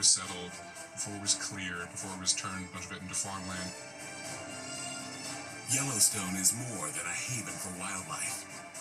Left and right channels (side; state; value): both; identical; correlation 1.00